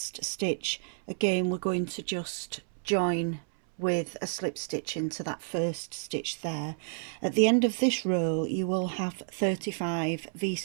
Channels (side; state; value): left; silent; 57 dB below the other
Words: stitch, again we're going to just join with a slip stitch into that first stitch there. At the end of this row you will have 35